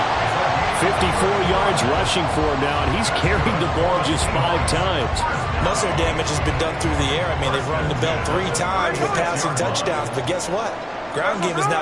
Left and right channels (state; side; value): identical; both; correlation 1.00